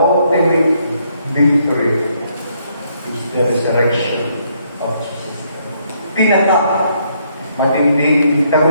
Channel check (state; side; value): inverted; both; correlation -0.72